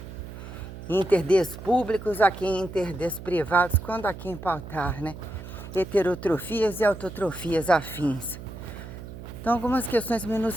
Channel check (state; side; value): noise; right; hum, 12 dB below the sound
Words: interdes públicos a quem interdes privados, quando a quem pautar, né? Heterotrofias e autotrofias afins. Então, algumas questões